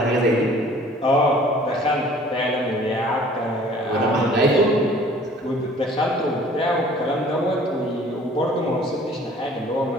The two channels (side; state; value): both; normal; correlation 0.52